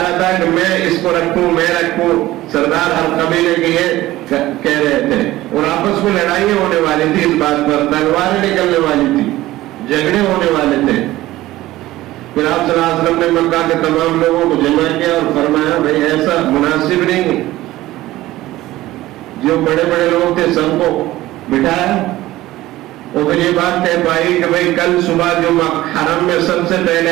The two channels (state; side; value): quieter; left; 16.5 dB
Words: رہا تھا کہ میں اس کو رکھوں، میں رکھوں۔ سردار ہر قبیلے کے یہ کہہ رہے تھے، اور آپس میں لڑائیاں ہونے والی تھی اس بات پر، تلواریں نکلنے والی تھی، جھگڑے ہونے والے تھے۔ پھر آپ صلی اللہ علیہ وسلم نے مکہ کے تمام لوگوں کو جمع کیا اور فرمایا، بھائی ایسا مناسب نہیں۔ جو بڑے بڑے لوگ تھے سب کو بٹھایا، اور پھر یہ بات طے پائی کہ بھائی کل صبح جو حرم میں سب سے